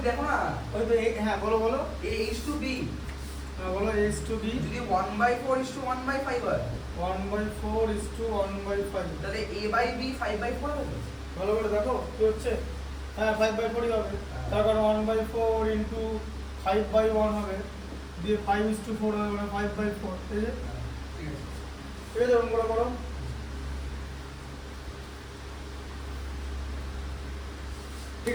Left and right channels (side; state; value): both; identical; correlation 1.00